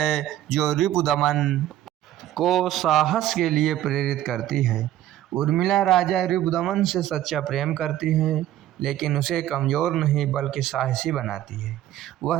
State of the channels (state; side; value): quieter; left; 12.9 dB